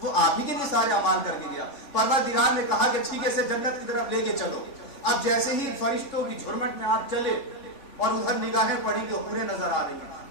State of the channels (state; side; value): late; right; 3.5 ms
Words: آپ ہی کے لیے سارے اعمال کر کے گیا۔ پروردگار نے کہا کہ ٹھیک ہے سے جنت کی طرف لے کے چلو۔ اب جیسے ہی فرشتوں کی جھرمٹ میں آپ چلے اور ادھر نگاہیں پڑی کہ حوریں نظر آ رہی ہیں،